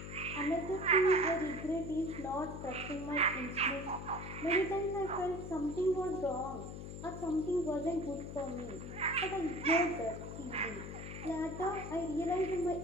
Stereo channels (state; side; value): noise; left; hum, 9 dB below the sound